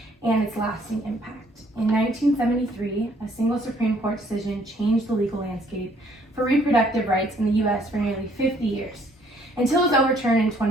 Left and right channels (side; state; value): both; normal; correlation 0.63